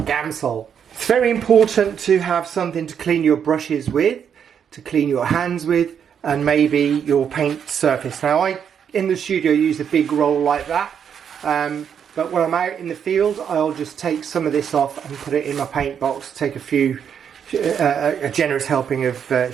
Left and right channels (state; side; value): quieter; left; 7.9 dB